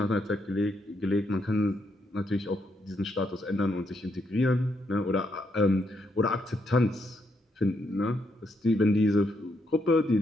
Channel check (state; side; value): normal; both; correlation 0.77